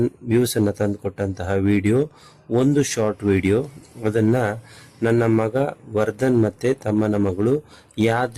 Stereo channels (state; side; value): identical; both; correlation 1.00